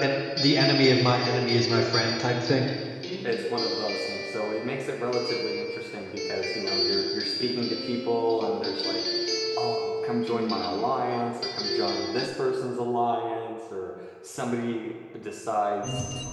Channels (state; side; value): identical; both; correlation 1.00